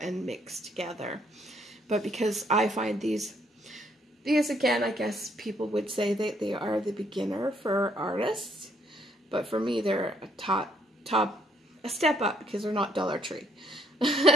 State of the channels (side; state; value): both; normal; correlation 0.69